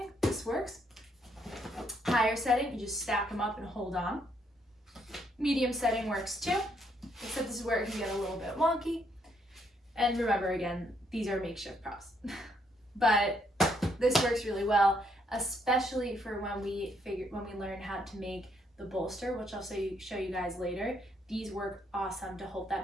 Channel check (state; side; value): normal; both; correlation 0.72